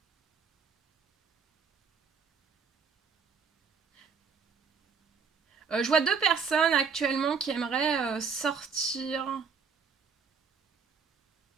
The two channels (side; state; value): left; quieter; 5.9 dB